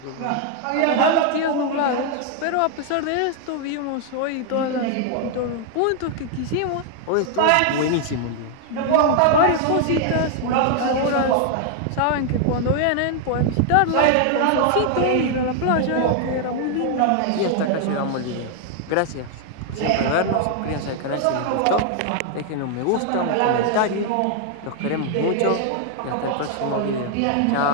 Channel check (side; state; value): both; different; correlation 0.00